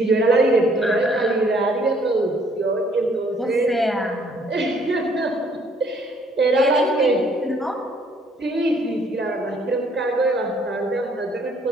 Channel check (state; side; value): normal; both; correlation 0.63